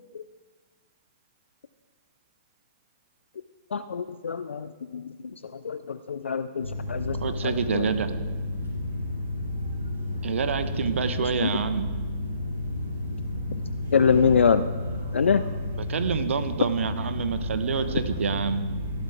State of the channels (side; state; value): both; inverted; correlation -0.65